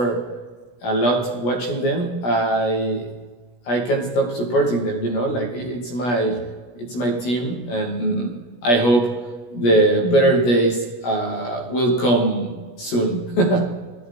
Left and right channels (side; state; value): right; late; 17 ms